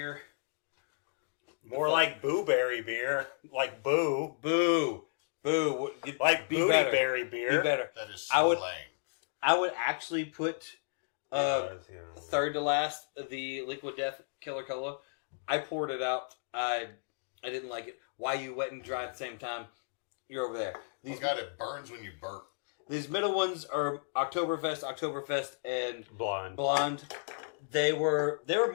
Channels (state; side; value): silent; right; digital silence